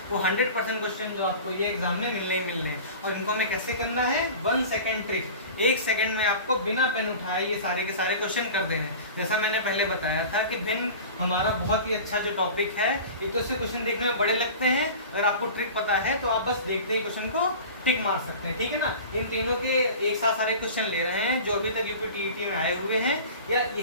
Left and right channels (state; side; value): inverted; both; correlation -0.37